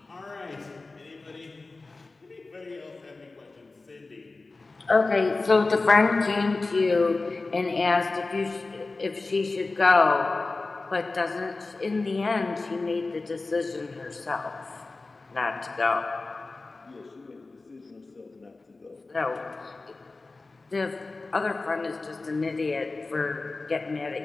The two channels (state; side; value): quieter; right; 3.5 dB